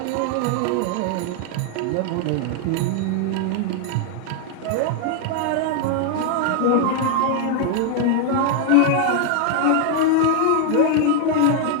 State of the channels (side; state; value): both; different; correlation 0.00